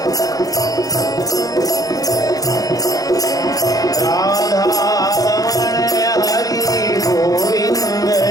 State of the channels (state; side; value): late; right; 0.17 ms